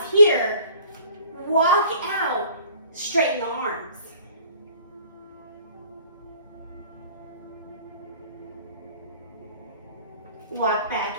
here, walk out, straighten the arms. Walk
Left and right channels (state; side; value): inverted; both; correlation -0.52